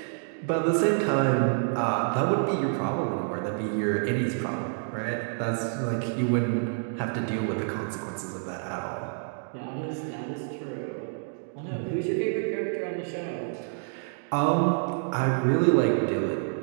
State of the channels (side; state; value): left; silent; 59 dB below the other